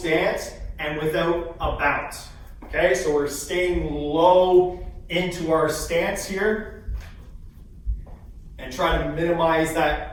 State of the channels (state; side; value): identical; both; correlation 1.00